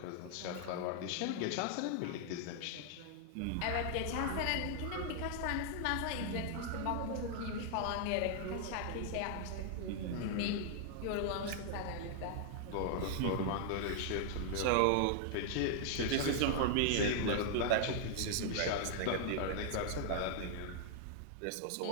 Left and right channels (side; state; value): both; different; correlation 0.00